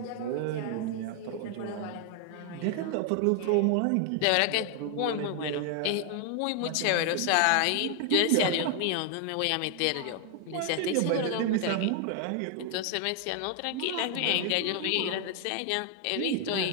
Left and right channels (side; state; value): both; different; correlation 0.00